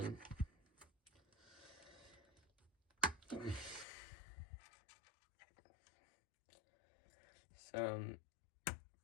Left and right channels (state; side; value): drops out; right; at 3.9 s